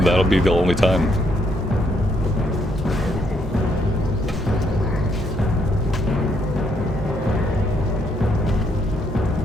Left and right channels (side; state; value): both; normal; correlation 0.73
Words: that'll be the only time.